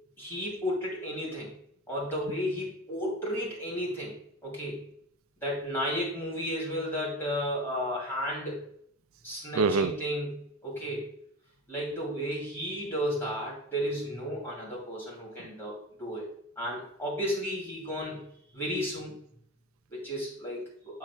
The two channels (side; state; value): both; normal; correlation 0.26